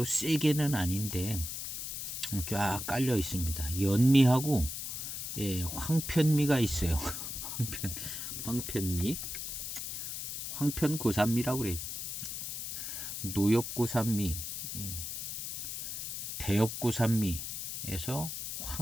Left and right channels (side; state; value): left; noise; hiss, 5 dB below the sound